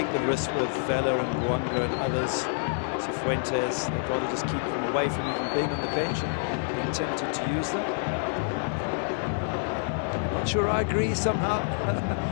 the risk with Vela and Buanga and others, Cifuentes. They'd rather just keep them away from even being on the bench and being tempted to use them. Not sure I agree somehow.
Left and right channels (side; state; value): right; silent; digital silence